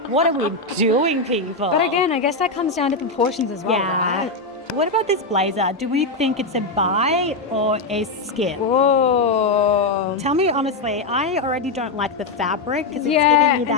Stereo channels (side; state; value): right; quieter; 3.3 dB